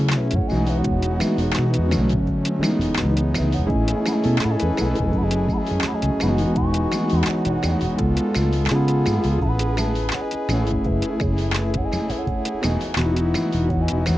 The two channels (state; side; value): normal; both; correlation 0.94